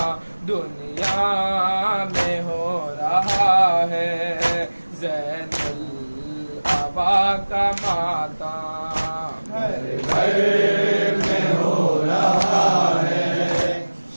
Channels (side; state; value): both; inverted; correlation -1.00